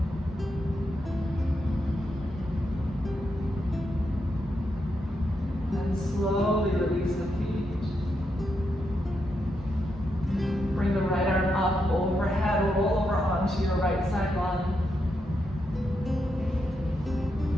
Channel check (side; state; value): both; normal; correlation 0.83